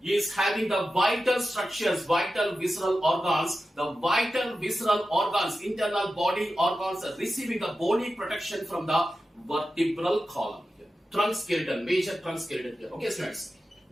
is having the vital structures, vital visceral organs. The vital visceral organs, internal body organs are receiving the bony protection from the vertebral column here. Trunk skeleton, major trunk skeleton here. Okay, students.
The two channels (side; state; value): both; normal; correlation 0.92